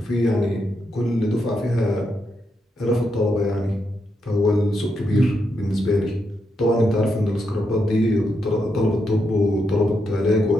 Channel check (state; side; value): normal; both; correlation 0.82